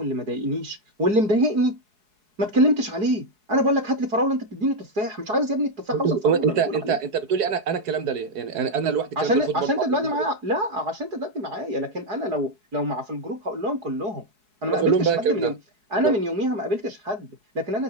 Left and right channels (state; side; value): late; left; 4.7 ms